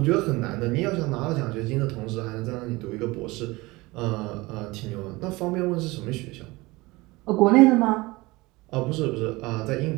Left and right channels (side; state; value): left; quieter; 22.0 dB